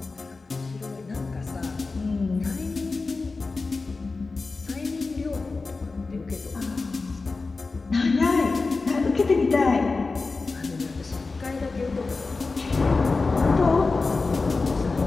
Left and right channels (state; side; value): quieter; right; 3.9 dB